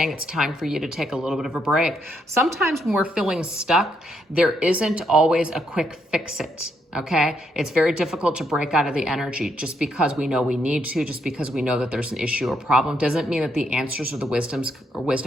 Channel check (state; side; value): normal; both; correlation 0.76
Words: it's time for you to take a little bit of a break. Sometimes when we're feeling stuck, there isn't always a quick fix it. Okay, it's very difficult to break out of the energy. Just because we know we need to, just because we know that there's an issue or problem, doesn't mean that the answers or the